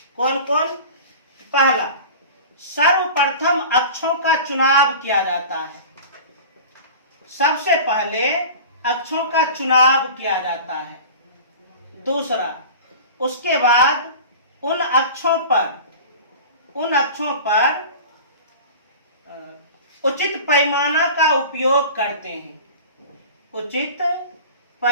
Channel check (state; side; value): inverted; both; correlation -0.37